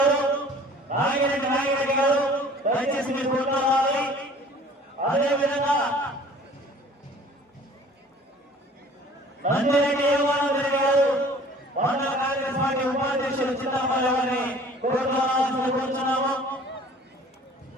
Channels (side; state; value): both; normal; correlation 0.49